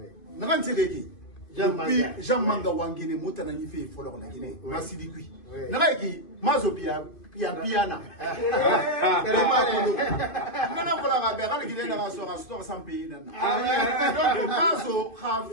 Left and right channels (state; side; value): late; right; 2.5 ms